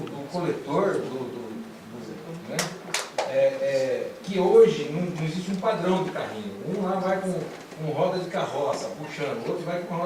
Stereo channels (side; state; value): both; identical; correlation 1.00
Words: coletor, né? Que hoje não existe um padrão de carrinho. Um lá vai com roda de carroça, puxando, o outro vai com uma